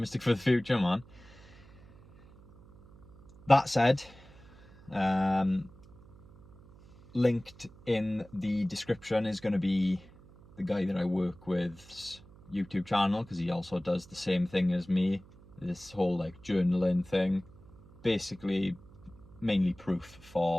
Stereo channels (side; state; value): right; noise; hum, 23 dB below the sound